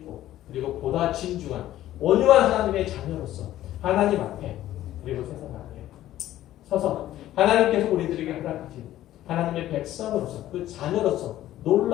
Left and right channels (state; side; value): quieter; right; 13.6 dB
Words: 그리고 보다 진중한 온유한 하나님의 자녀로서 하나님 앞에 그리고 세상 앞에 서서 하나님께서 우리들에게 허락하신 하나님의 백성으로서 그 자녀로서